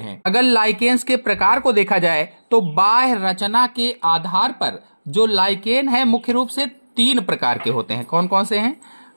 अगर लाइकेन्स के प्रकार को देखा जाए, तो बाह्य रचना के आधार पर जो लाइकेन है, मुख्य रूप से 3 प्रकार के होते हैं। कौन कौन से हैं?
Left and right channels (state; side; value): inverted; both; correlation -1.00